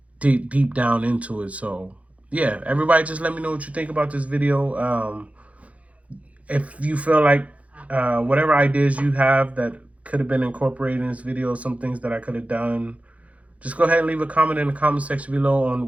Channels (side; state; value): left; late; 0.066 ms